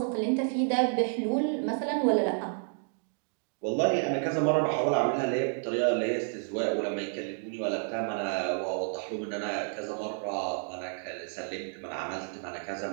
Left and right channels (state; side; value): silent; left; 58 dB below the other